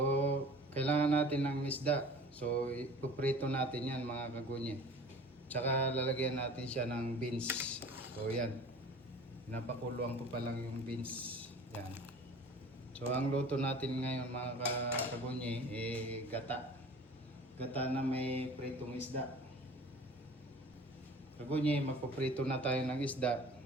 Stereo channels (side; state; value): both; normal; correlation 0.43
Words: kailangan natin ng isda. So ipuprito natin yan mga kagunye. Tsaka lalagyan natin siya ng beans. So yan. Pinapakuluan ko pa lang yung beans. Yan. So ang luto natin ngayon mga kagunye gata. Gata na may pritong isda. Kagunye, magpaprito na tayo ng isda.